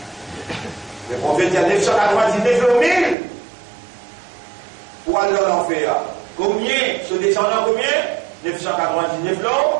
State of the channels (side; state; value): left; drops out; at 3.2 s